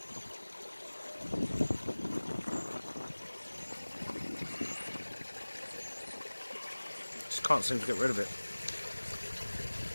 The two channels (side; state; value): both; inverted; correlation -1.00